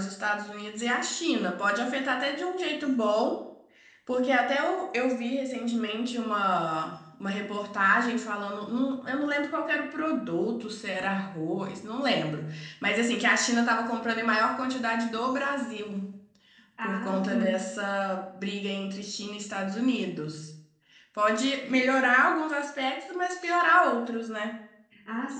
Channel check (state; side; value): identical; both; correlation 1.00